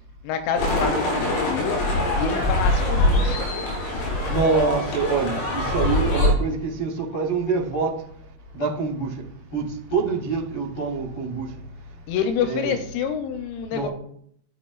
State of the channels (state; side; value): late; right; 22 ms